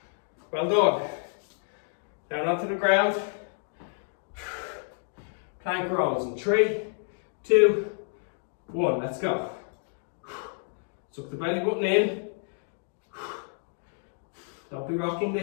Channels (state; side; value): silent; right; 58 dB below the other